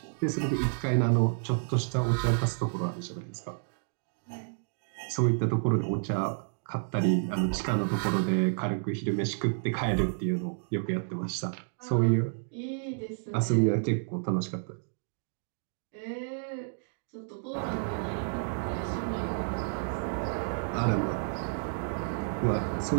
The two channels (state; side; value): silent; left; digital silence